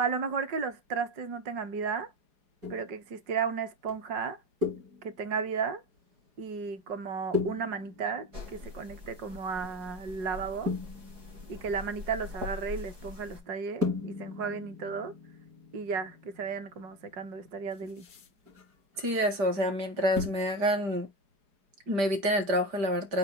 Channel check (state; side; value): late; left; 5.1 ms